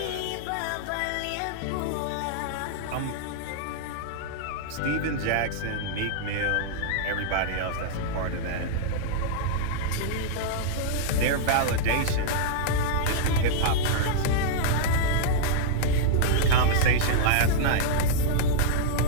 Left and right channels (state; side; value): different; both; correlation -0.02